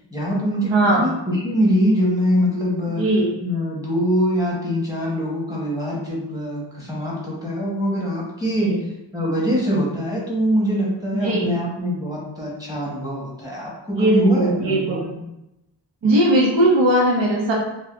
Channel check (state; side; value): normal; both; correlation 0.39